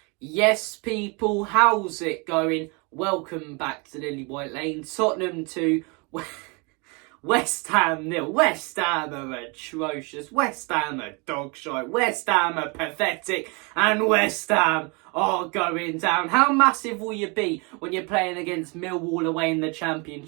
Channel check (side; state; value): left; quieter; 30.8 dB